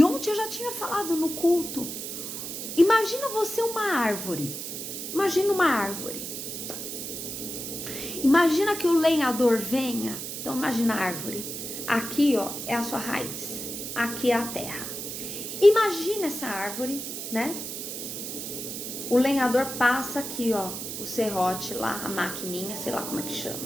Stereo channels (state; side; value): noise; right; hiss, 6 dB below the sound